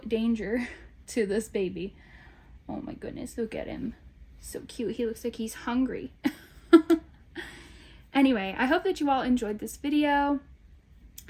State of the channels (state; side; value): identical; both; correlation 1.00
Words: danger to this baby. Oh my goodness, look at him. So cute. He looks like he's hungry. Anyway, I hope that you all enjoyed this video.